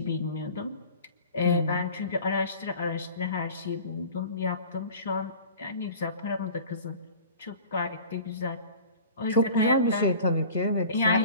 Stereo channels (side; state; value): both; inverted; correlation -0.42